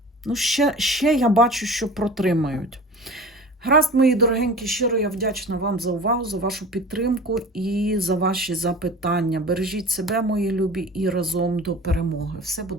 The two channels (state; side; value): normal; both; correlation 0.38